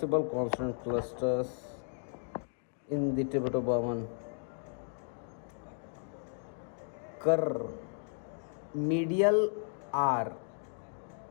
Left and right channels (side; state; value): right; silent; 55 dB below the other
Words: consonant clusters in the Tibeto-Burman. Kar, medial R,